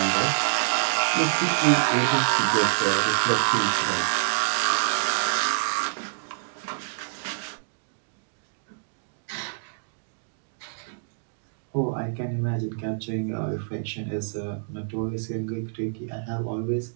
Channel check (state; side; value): silent; left; digital silence